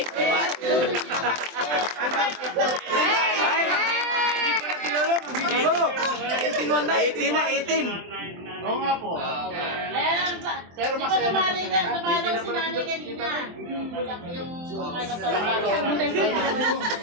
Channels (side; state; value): left; late; 23 ms